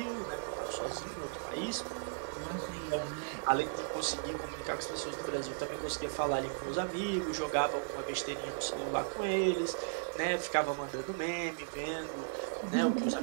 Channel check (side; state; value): left; silent; digital silence